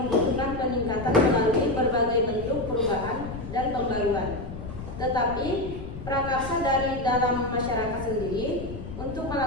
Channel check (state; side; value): noise; left; rumble, 10 dB below the sound